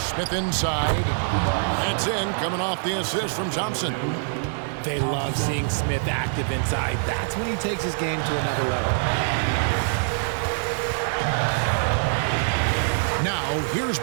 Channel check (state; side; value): silent; left; digital silence